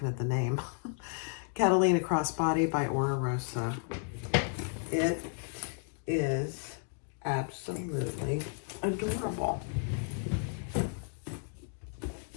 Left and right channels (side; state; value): right; silent; 56 dB below the other